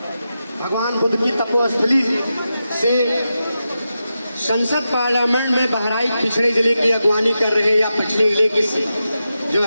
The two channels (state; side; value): inverted; both; correlation -0.89